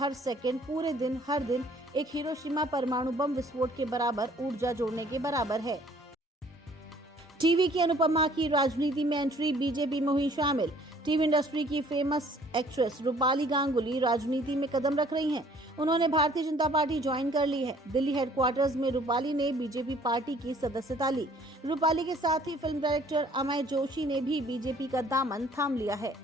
सेकंड, पूरे दिन, हर दिन एक हिरोशिमा परमाणु बम विस्फोट के बराबर ऊर्जा जोड़ने के बराबर है। टीवी की अनुपमा की राजनीति में एंट्री, बीजेपी में हुई शामिल। टीवी इंडस्ट्री की फेमस एक्ट्रेस रूपाली गांगुली राजनीति में कदम रख रही हैं। उन्होंने भारतीय जनता पार्टी ज्वाइन कर ली है। दिल्ली हेडक्वार्टर्स में रूपाली ने बीजेपी पार्टी की सदस्यता ली। रूपाली के साथ ही फिल्म डायरेक्टर अमय जोशी ने भी बीजेपी का दामन थाम लिया है।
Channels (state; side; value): normal; both; correlation 0.57